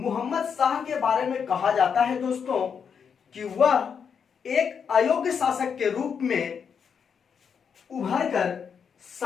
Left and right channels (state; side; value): quieter; right; 6.8 dB